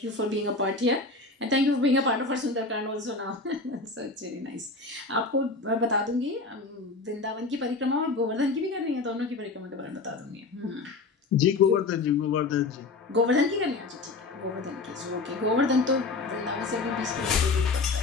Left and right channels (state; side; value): quieter; right; 3.7 dB